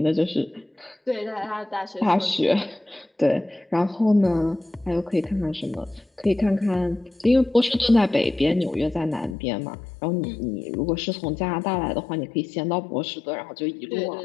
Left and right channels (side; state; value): right; drops out; at 9.3 s